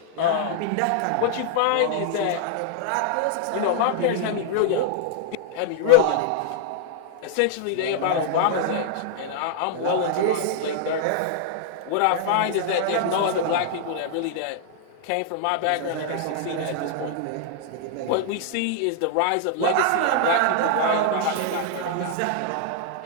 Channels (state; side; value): different; both; correlation -0.01